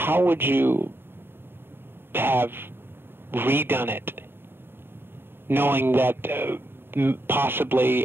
would you have redone it, knowing that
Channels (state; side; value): late; left; 0.11 ms